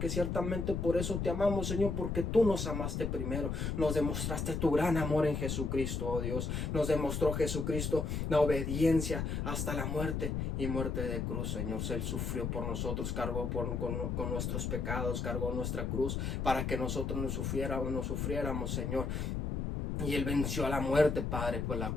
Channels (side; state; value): left; noise; rumble, 1 dB below the sound